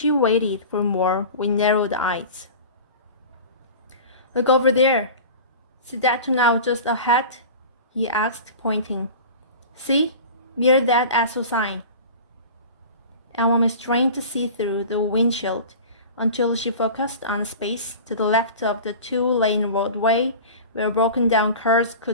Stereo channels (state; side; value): inverted; both; correlation -0.36